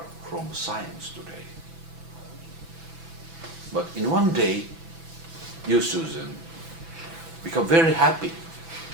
from science today. But in one day, you, Susan, become very happy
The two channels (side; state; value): left; late; 6.0 ms